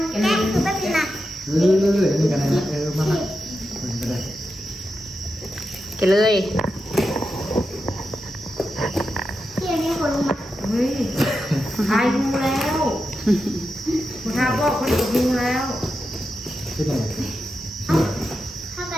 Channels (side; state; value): both; normal; correlation 0.88